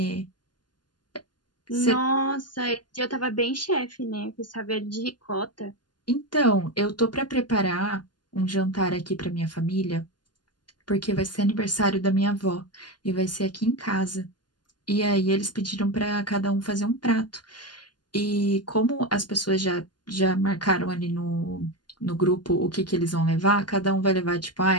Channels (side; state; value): right; late; 0.71 ms